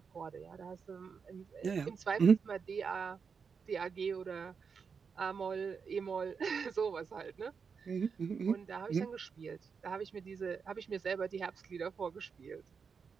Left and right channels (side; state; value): left; quieter; 5.9 dB